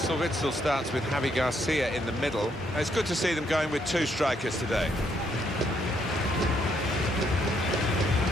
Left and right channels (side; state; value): both; normal; correlation 0.73